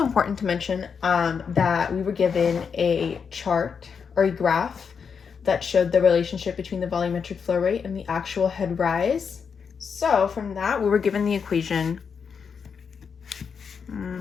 important to mention that we were given a chart or a graph that showed the relationship between the volumetric flow rate and the actual head rise. So from that, we were given the equation,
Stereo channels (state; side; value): quieter; right; 6.3 dB